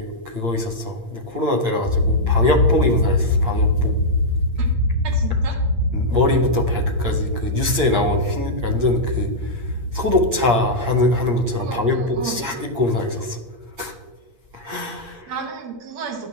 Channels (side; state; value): left; late; 8.6 ms